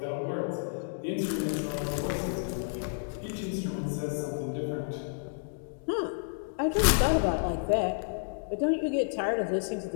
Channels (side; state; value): right; silent; digital silence